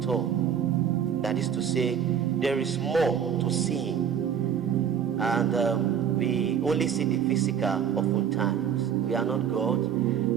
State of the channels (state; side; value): quieter; left; 8.3 dB